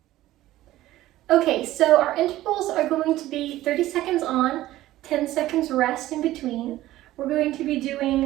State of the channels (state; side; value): quieter; left; 15.4 dB